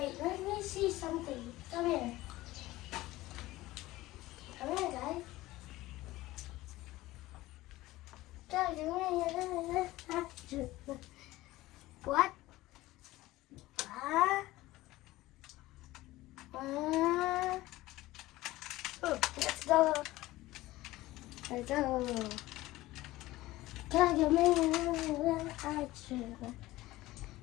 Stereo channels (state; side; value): quieter; right; 17.8 dB